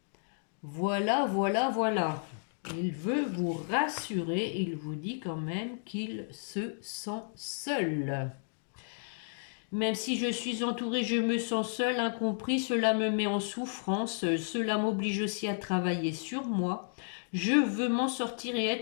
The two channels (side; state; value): right; silent; digital silence